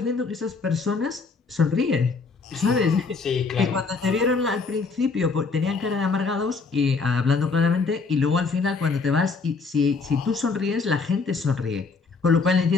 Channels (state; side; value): quieter; right; 4.5 dB